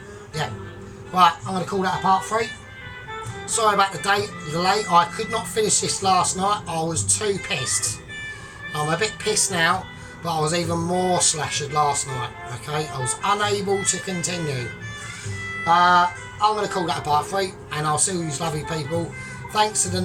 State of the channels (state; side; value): identical; both; correlation 1.00